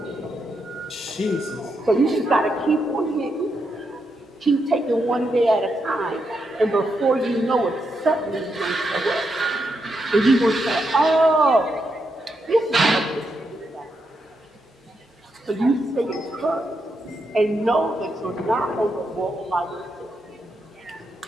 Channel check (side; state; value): both; normal; correlation 0.82